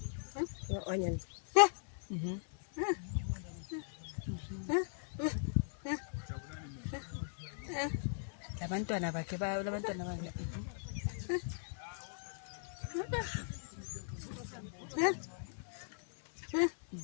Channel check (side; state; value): right; silent; 52 dB below the other